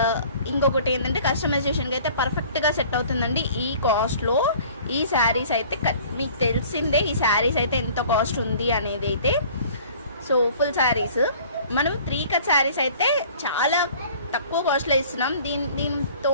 ఇంకొకటి ఏంటంటే కస్టమైజేషన్కి అయితే పర్ఫెక్ట్గా సెట్ అవుతుందండి. ఈ కాస్ట్లో ఈ శారీస్ అయితే మీకు తెలిసిందే, ఈ శారీస్ అయితే ఎంత కాస్ట్ ఉంది అనేది అయితే. సో ఫుల్ శారీస్ మనం 3 కట్ శారీస్ అయితే చాలా తక్కువ కాస్ట్లో ఇస్తున్నాం. దీంతో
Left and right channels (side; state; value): both; inverted; correlation -0.49